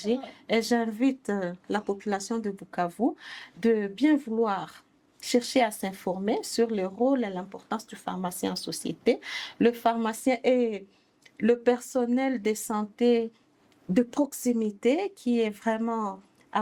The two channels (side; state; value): both; identical; correlation 1.00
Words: et j'invite la population de Bukavu de bien vouloir chercher à s'informer sur le rôle et l'importance du pharmacien en société. Le pharmacien est le personnel de santé de proximité qui est vraiment à